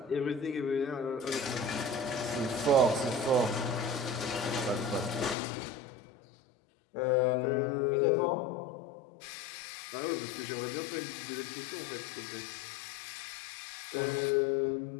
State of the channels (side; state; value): right; drops out; at 5.4 s